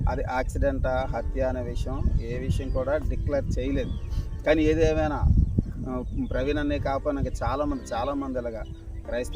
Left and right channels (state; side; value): identical; both; correlation 1.00